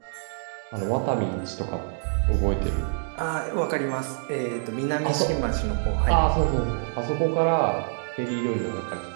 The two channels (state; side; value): silent; left; digital silence